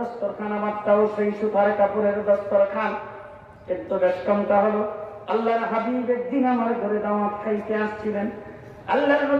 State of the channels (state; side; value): identical; both; correlation 1.00